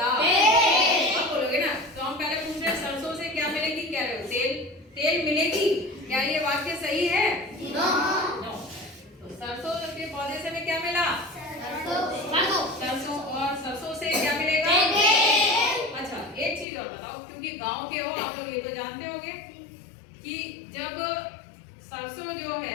आप बोलोगे ना, तो हम पहले पूछ रहे हैं सरसों से क्या मिलेगी, कह रहे हो तेल मिलेगी। क्या ये वाक्य सही है? नो। तो सरसों के पौधे से हमें क्या मिला? सरसों। और सरसों से क्या मिलेगा? अच्छा, एक चीज और बताओ, क्योंकि गांव के हो आप लोग, ये तो जानते होंगे कि जब सरसों जो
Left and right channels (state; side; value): drops out; right; at 16.7 s